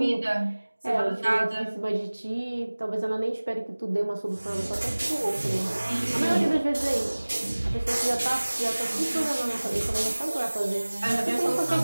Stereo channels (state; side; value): inverted; both; correlation -1.00